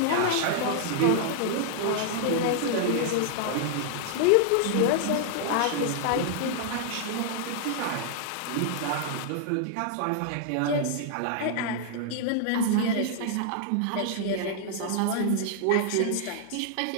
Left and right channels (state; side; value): different; both; correlation -0.01